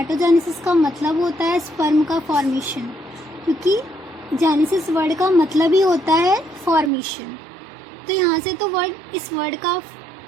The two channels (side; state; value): left; drops out; at 6.9 s